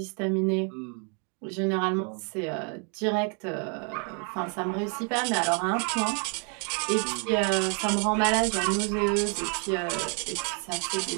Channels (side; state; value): left; quieter; 38.7 dB